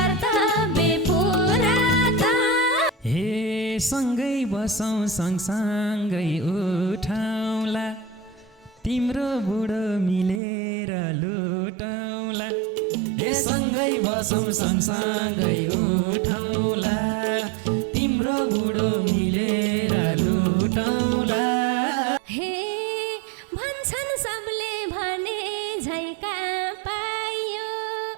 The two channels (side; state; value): left; drops out; at 10.4 s